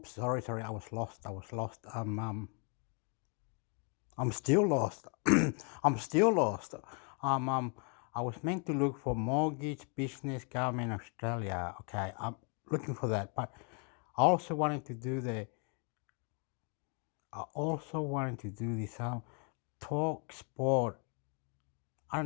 Sorry. I was lost. I'm still lost. I'm still lost. Um. Um. I was meant to look for mortgage, business, government, Australia. Okay. I'm looking for that, but I also wanted to do the. I also wanted to do this. Talk sport. I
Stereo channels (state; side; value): quieter; right; 38.0 dB